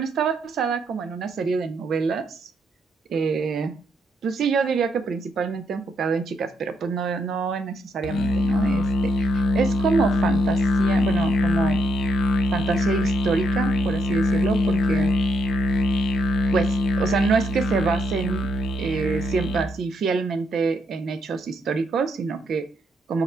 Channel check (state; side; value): normal; both; correlation 0.76